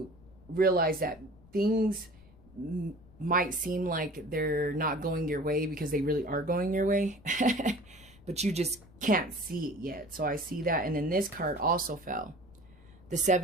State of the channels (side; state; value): left; noise; rumble, 24 dB below the sound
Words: realize that things might seem like they're not going your way because they really are going your way. But you just can't see it yet. So I see that. And then this card also fell. The